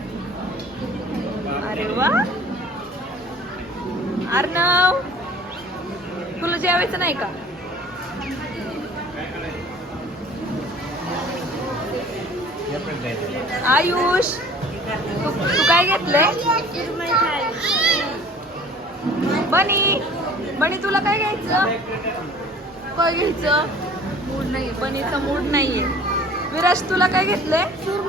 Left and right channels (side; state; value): both; normal; correlation 0.48